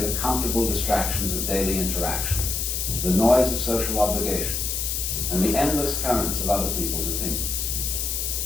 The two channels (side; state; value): left; noise; hiss, 1 dB below the sound